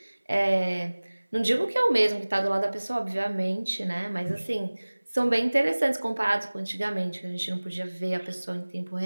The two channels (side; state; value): both; inverted; correlation -1.00